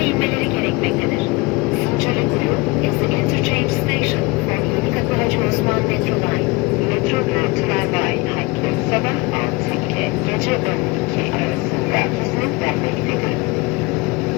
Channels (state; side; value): quieter; right; 23.8 dB